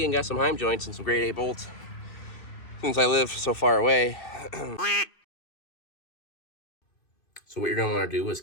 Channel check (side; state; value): right; late; 2.6 ms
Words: and got some Heim joints and some grade 8 bolts since I live so far away. So what you're going to want to do is